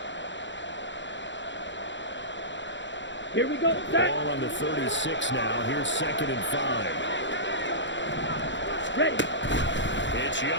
Here we go. Ball on the 36 now. Here's 2nd and 5. Ready. It's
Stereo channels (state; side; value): late; right; 0.54 ms